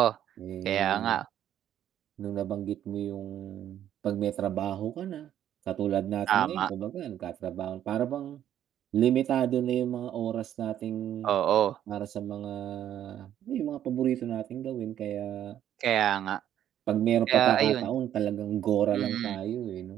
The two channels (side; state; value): left; quieter; 10.9 dB